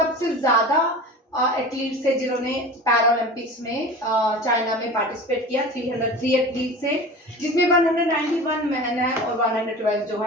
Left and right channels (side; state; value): both; normal; correlation 0.35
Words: ज्यादा एथलीट्स है जिन्होंने पैरालंपिक्स में चाइना में पार्टिसिपेट किया, 303 एथलीट्स है, जिसमें 191 मैन है और 112 जो